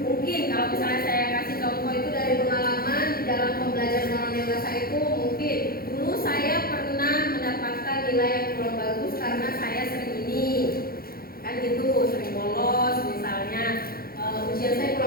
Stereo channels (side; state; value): right; late; 0.43 ms